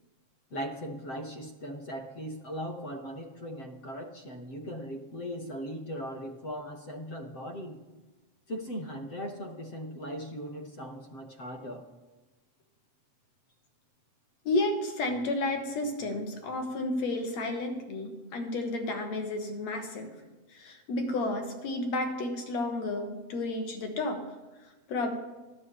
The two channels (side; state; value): right; late; 7.7 ms